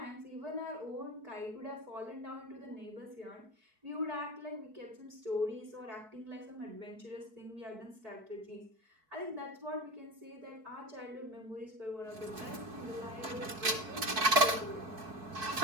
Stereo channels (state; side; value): late; left; 4.6 ms